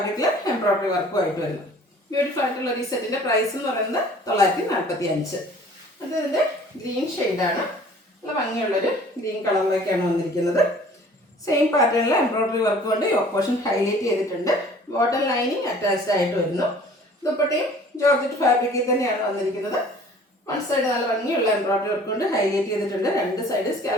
എംബ്രോയ്ഡറി വർക്കുമായിട്ട് വരുന്നു. ബ്യൂട്ടിഫുൾ ആയിട്ടുള്ള ഈ സെറ്റിന്റെ പ്രൈസ് എന്ന് പറയുന്നത് 945. അത് ഇതിന്റെ ഗ്രീൻ ഷെയ്ഡാണ്. നല്ല ഭംഗിയുള്ളൊരു ഗ്രീൻ കളറിലേക്കാണ് വന്നിരിക്കുന്നത്. സെയിം പാറ്റേണിൽ എംബ്രോയ്ഡറി വർക്ക് കൊണ്ട് യോക്ക് പോർഷൻ ഹൈലൈറ്റ് ചെയ്തിട്ടുണ്ട്. ബോട്ടം ലൈനിങ് അറ്റാച്ച്ഡ് ആയിട്ട് വരുന്നു. ദുപ്പട്ടയും ജോർജറ്റ് ഫാബ്രിക്കിൽ തന്നെയാണ് വന്നിരിക്കുന്നത്. വൺ സൈഡ് നല്ല ഭംഗിയുള്ള എംബ്രോയ്ഡറി വർക്ക് കൊണ്ട് ഹൈലൈറ്റ് ചെയ്തിട്ടുണ്ട്. രണ്ട് സൈഡ്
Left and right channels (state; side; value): normal; both; correlation 0.50